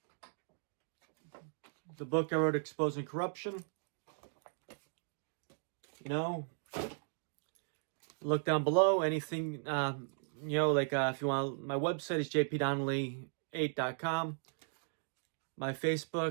the book I wrote, Exposing Corruption. Look down below, anything, if you want, my website is jpdonnelly8.com. My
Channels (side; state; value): left; silent; digital silence